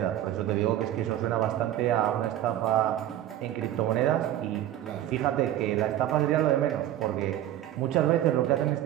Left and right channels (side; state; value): left; quieter; 12.7 dB